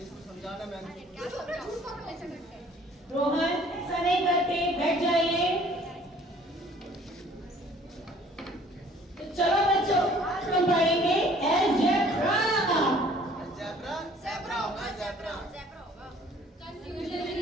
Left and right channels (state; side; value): normal; both; correlation 0.55